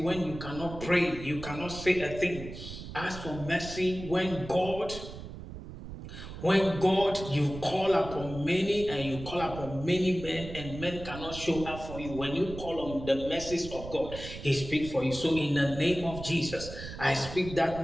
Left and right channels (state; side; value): noise; right; rumble, 11 dB below the sound